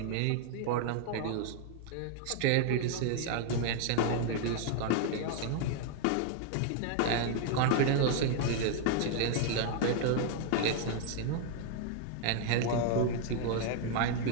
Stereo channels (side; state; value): both; different; correlation 0.00